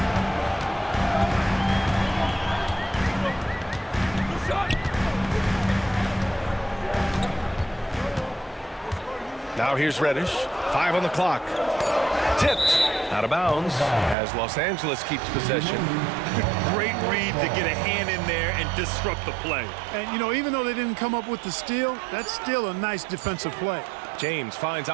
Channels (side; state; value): left; drops out; at 14.2 s